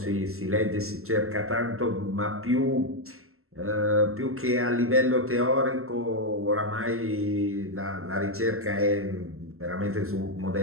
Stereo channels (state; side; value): late; left; 0.62 ms